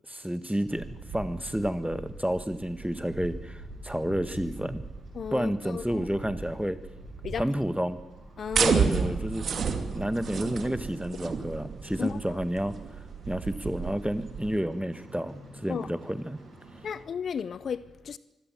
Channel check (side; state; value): both; normal; correlation 0.91